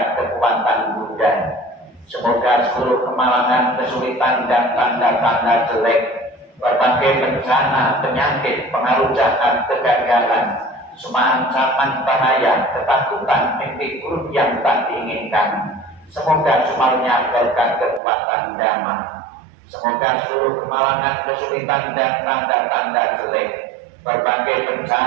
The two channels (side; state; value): left; drops out; at 18.0 s